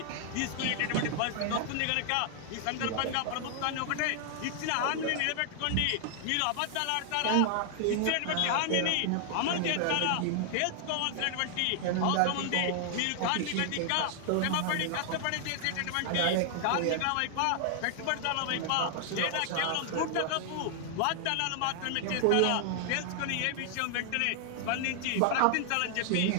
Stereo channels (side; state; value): both; different; correlation 0.00